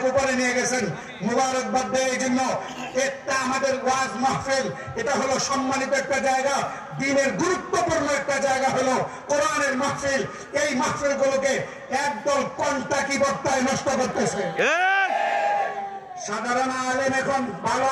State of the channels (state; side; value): identical; both; correlation 1.00